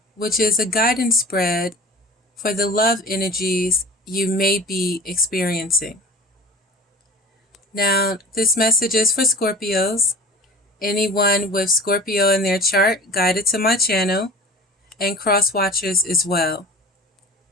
which is a guidance spread for the love energies you may be experiencing. Now, this message is for Scorpios. Anyone with Scorpio in their chart guided to my channel, and cross watchers as well.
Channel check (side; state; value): both; normal; correlation 0.40